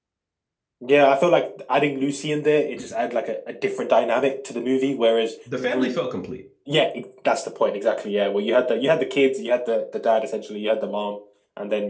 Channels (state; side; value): identical; both; correlation 1.00